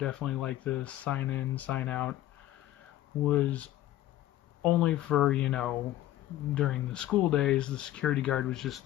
like the sign-in, sign-out was only for, during the school days. The security guard was just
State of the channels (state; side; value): quieter; right; 14.0 dB